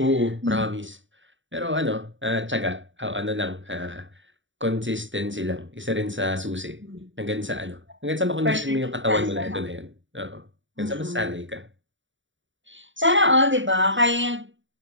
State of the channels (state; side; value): late; left; 0.55 ms